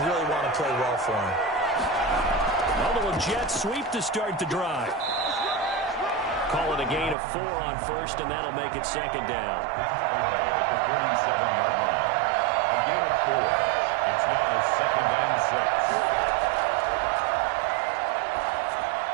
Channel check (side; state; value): left; drops out; at 7.2 s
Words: really want to play well for him. A little jet sweep to start the drive. Call it a gain of 4 on 1st, and that'll make it 2nd down. At the 47-yard line. A gain of 4. It's now 2nd and 6.